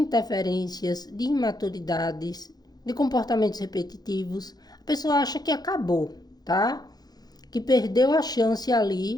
de imaturidades, de comportamentos repetitivos. A pessoa acha que acabou, tá? Que perdeu a chance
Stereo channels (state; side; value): late; right; 0.19 ms